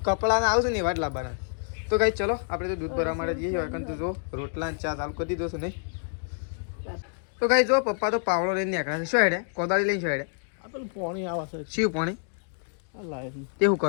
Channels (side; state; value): right; silent; digital silence